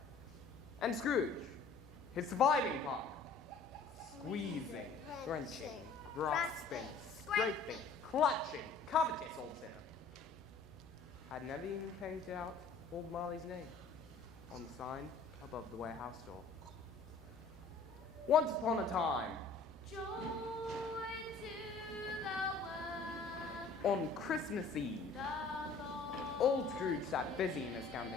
And Scrooge, his surviving partner, squeezing, drenching, grasping, scraping, clutching, covetous old sinner, had never even painted out old Marley's name on the sign above the warehouse door. Once upon a time, Joy to the world. On Christmas Eve, old Scrooge sat busy in his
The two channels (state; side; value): quieter; right; 4.5 dB